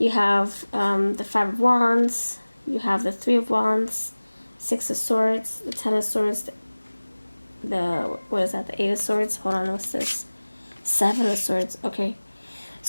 have the Five of Wands. You have the Three of Wands, Six of Swords, the Ten of Swords, the, what is that, the Eight of Swords? Hold on, what's this? Seven of Swords. Okay.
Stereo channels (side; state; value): both; inverted; correlation -1.00